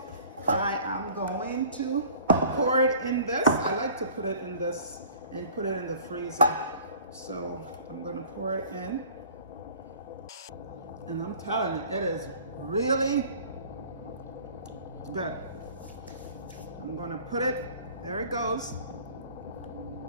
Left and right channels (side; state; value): both; inverted; correlation -0.48